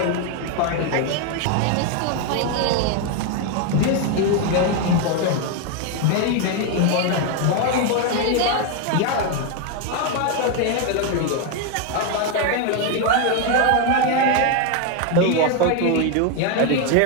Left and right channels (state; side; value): different; both; correlation 0.01